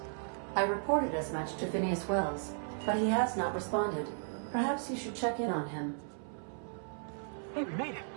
I reported as much to Phineas Wells, but he has not responded. Perhaps you should check in on him. Hey, we made it.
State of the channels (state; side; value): silent; left; 54 dB below the other